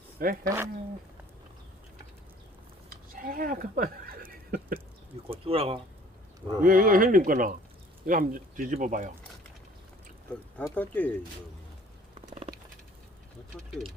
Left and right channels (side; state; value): both; normal; correlation 0.53